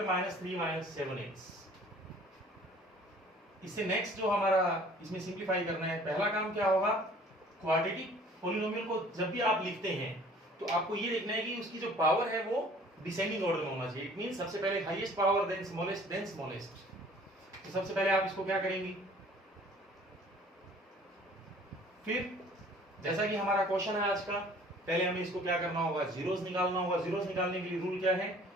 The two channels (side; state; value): both; normal; correlation 0.52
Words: minus 3 minus 7x। इससे नेक्स्ट जो हमारा इसमें सिंप्लीफाई करना है, पहला काम क्या होगा, क्वाड्रेटिक पॉलिनोमियल को जब भी आप लिखते हैं तो आपको ये देखना है कि उसकी जो पावर है वो डिसेंडिंग ऑर्डर में होना चाहिए। इट मींस सबसे पहले हाईएस्ट पावर देन स्मॉलेस्ट। तो सबसे पहले आप इसको क्या करेंगे, फिर जैसा कि हमारा क्वेश्चन है आज का, पहले हमें इसको क्या करना होगा, जीरोस निकालना होगा। जीरोस निकालने के लिए रूल क्या है,